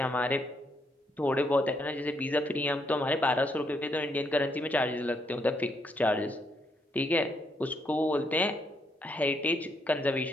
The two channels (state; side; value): normal; both; correlation 0.75